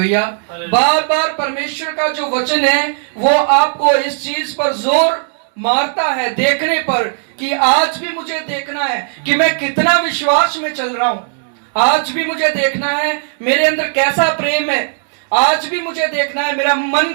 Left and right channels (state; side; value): silent; left; digital silence